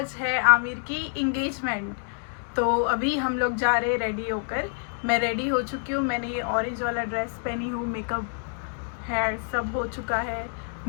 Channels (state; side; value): silent; right; 60 dB below the other